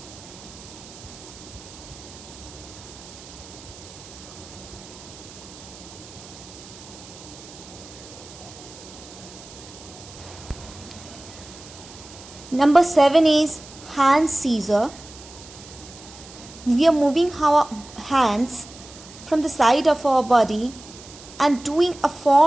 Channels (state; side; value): noise; right; hiss, 18 dB below the sound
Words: Number 7 is hand scissor. We are moving our hands from the side of our body and doing a